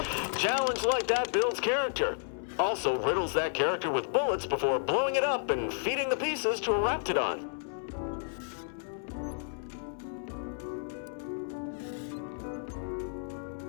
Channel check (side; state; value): right; silent; 57 dB below the other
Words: Challenge like that builds character. Also riddles that character with bullets before blowing it up and feeding the pieces to a Raptidon.